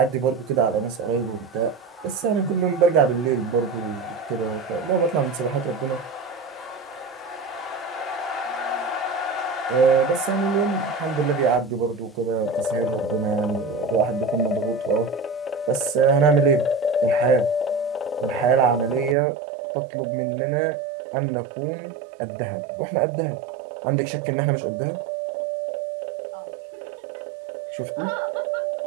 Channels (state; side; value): drops out; left; at 19.2 s